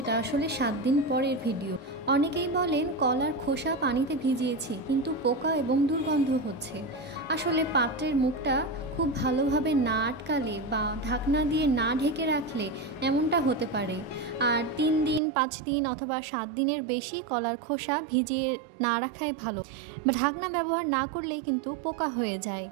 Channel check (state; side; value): drops out; left; at 15.2 s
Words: আসলে 7 দিন পরের ভিডিও। অনেকেই বলেন কলার খোসা পানিতে ভিজিয়েছি কিন্তু পোকা এবং দুর্গন্ধ হচ্ছে। আসলে পাত্রের মুখটা খুব ভালোভাবে না আটকালে বা ঢাকনা দিয়ে না ঢেকে রাখলে এমনটা হতে পারে। আর 3 দিন, 5 দিন অথবা 7 দিনের বেশি কলার খোসা ভিজিয়ে না রাখাই ভালো। ঢাকনা ব্যবহার না করলেই কিন্তু পোকা হয়ে যায়